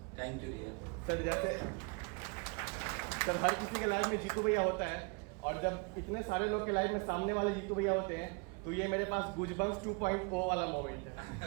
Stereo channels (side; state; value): left; quieter; 32.6 dB